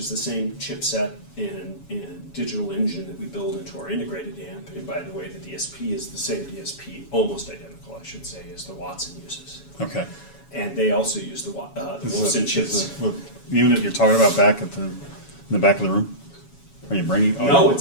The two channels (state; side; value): late; right; 7.2 ms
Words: the same chipset and digital engine that we build into our integrated amp. And by the way, the DSP is the same DSP, almost identical, I should say, as the Watson uses. Okay. And they also use the Wolfson chips. The unit you're talking about back in the back of the room? Are you bringing? No,